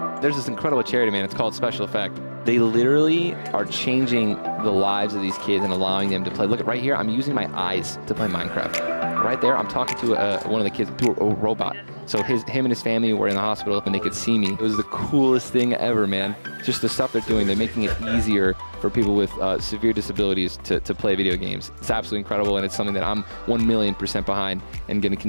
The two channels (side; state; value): both; inverted; correlation -1.00